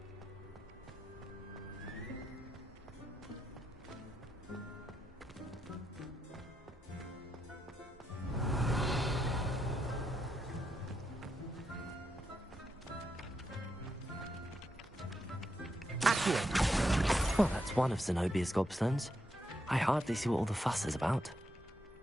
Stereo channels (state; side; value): normal; both; correlation 0.82